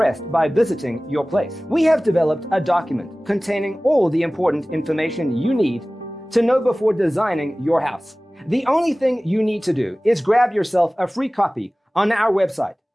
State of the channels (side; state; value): both; normal; correlation 0.98